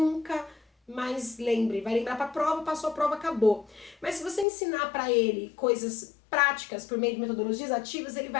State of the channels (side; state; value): right; drops out; at 4.5 s